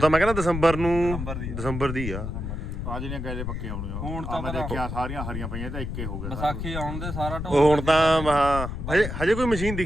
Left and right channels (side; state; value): left; noise; rumble, 5 dB below the sound